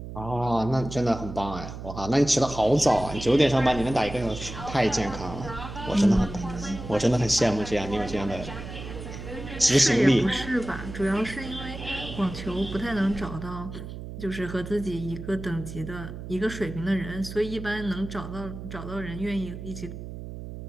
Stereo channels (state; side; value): noise; right; hum, 10 dB below the sound